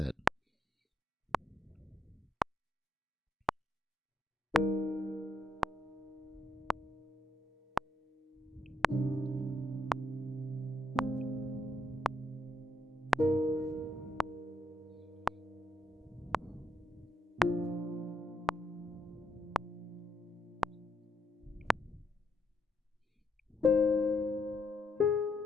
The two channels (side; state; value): both; normal; correlation 0.79